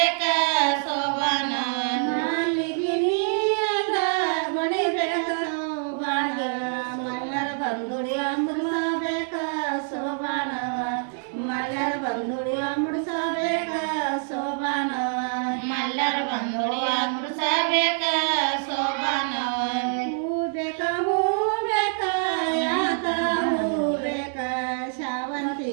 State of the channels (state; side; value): silent; left; 61 dB below the other